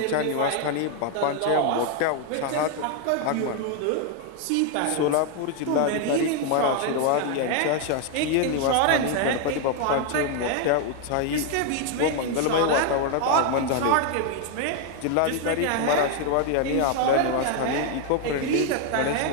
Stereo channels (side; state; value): both; different; correlation 0.01